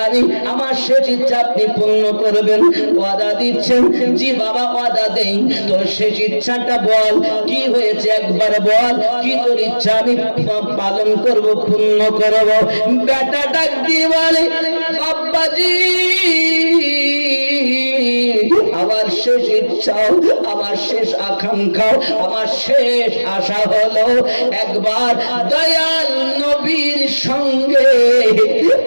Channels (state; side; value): inverted; both; correlation -1.00